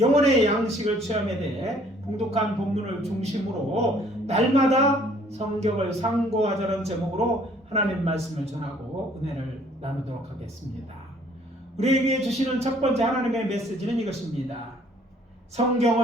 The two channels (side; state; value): both; normal; correlation 0.59